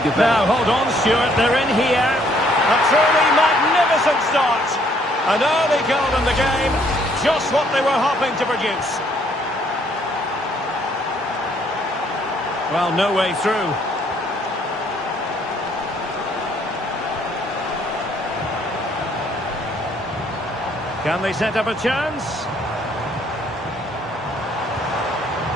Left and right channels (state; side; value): normal; both; correlation 0.65